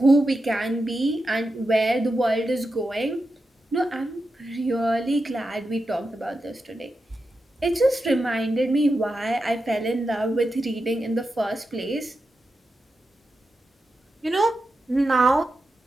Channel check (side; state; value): both; normal; correlation 0.89